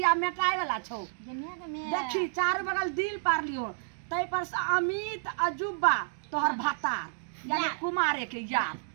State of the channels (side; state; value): left; silent; digital silence